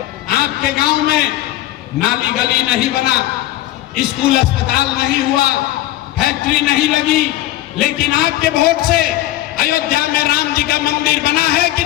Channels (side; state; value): right; quieter; 15.0 dB